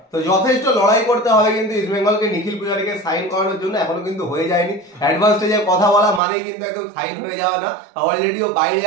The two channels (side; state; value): left; drops out; at 6.2 s